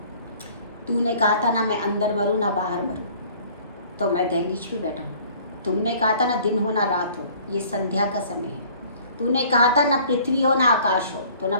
तूने कहा था ना मैं अंदर मरूं ना बाहर मरूं, तो मैं दहलीज पे बैठा हूँ। तुमने कहा था ना दिन हो ना रात हो, ये संध्या का समय है। तूने कहा था ना पृथ्वी हो ना आकाश हो, तो ना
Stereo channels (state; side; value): inverted; both; correlation -0.53